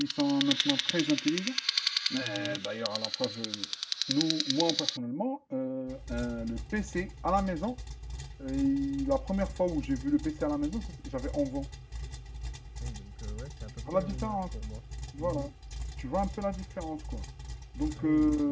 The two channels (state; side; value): identical; both; correlation 1.00